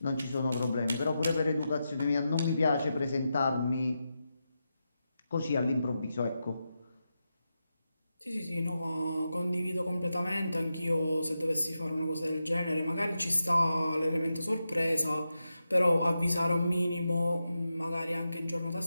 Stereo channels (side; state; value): both; inverted; correlation -0.89